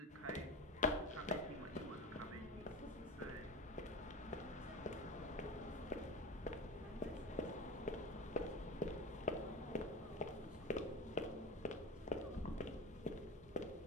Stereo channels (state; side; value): normal; both; correlation 0.28